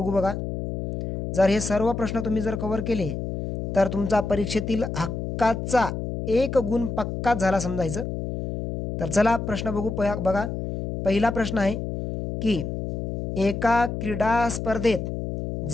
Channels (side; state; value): left; noise; hum, 4 dB below the sound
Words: बघा। जर हे सर्व प्रश्न तुम्ही जर कव्हर केले तर तुमचा परीक्षेतील हक्काचा 1 गुण पक्का झाला समजायचं। तर चला प्रश्न बघू बघा। पहिला प्रश्न आहे की एका क्रीडा स्पर्धेत